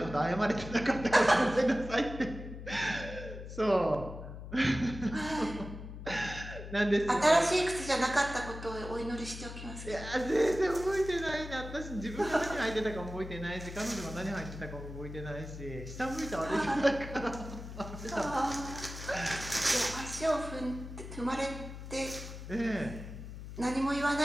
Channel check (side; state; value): left; noise; hum, 11 dB below the sound